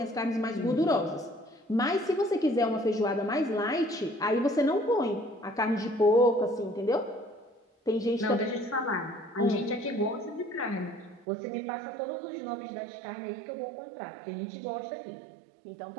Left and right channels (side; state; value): left; drops out; at 11.2 s